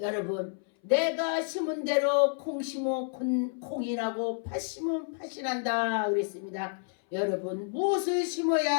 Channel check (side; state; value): right; silent; 58 dB below the other